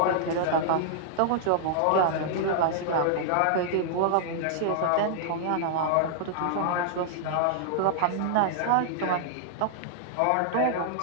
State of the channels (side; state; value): both; different; correlation -0.01